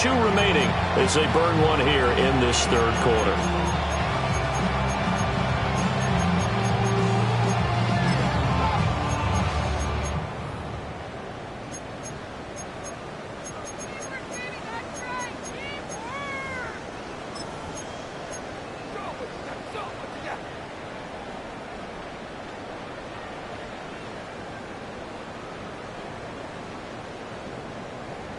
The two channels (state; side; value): identical; both; correlation 1.00